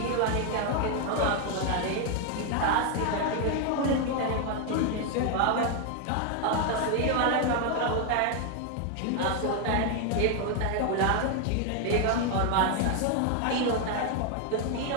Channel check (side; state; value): both; different; correlation 0.00